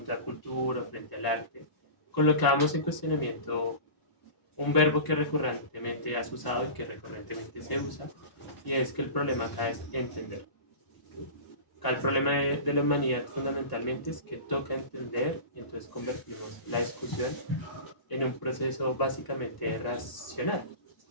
frente al arte, colocábamos en cuestionamiento un verbo que recurrentemente has usado y que recurrentemente se usa, y es que el problema acá es entender. Acá el problema de la humanidad fundamentalmente es que toca entender y entonces convertimos la discusión en un proceso básicamente racional,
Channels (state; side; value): late; right; 1.0 ms